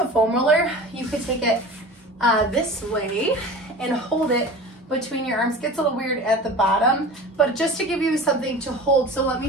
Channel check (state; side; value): normal; both; correlation 0.36